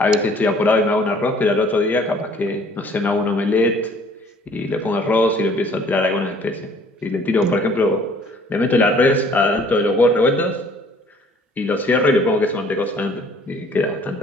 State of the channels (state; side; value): normal; both; correlation 0.56